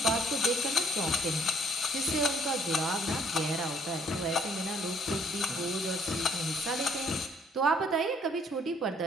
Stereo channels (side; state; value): both; normal; correlation 0.64